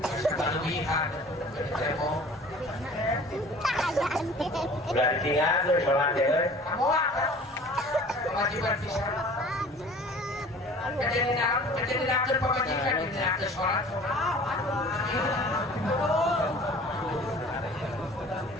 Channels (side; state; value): both; normal; correlation 0.46